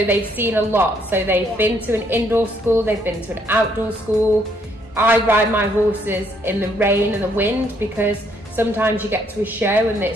they've seen a lot. So they've been to an indoor school, they've been to an outdoor school. I ride my horses in the rain and the wind, because sometimes you get to a show and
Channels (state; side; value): normal; both; correlation 0.69